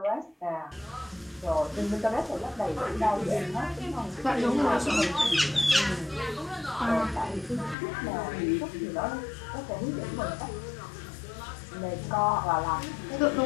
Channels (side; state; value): right; drops out; at 7.8 s